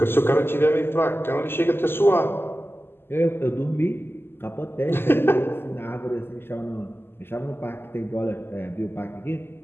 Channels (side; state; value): right; late; 0.11 ms